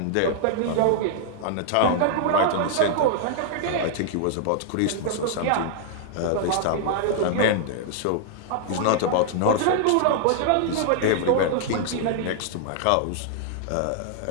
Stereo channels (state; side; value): different; both; correlation -0.01